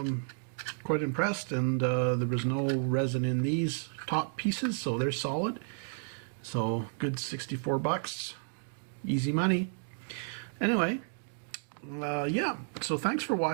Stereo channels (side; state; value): left; silent; digital silence